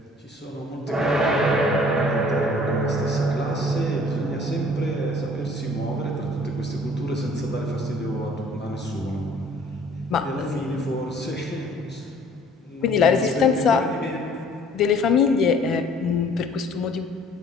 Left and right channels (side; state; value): both; normal; correlation 0.54